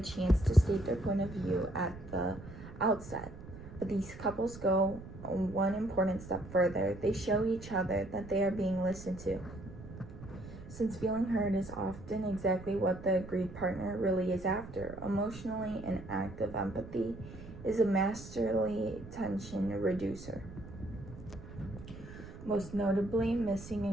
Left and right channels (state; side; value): noise; right; rumble, 14 dB below the sound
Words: chance to state their point of view at the outset. But these couples go one important step further. They show each other that they are being listened to. Since feeling heard is often exactly what the agreed partner really is after, emotionally an act of empathy is a masterly tension reducer. Most notably, missing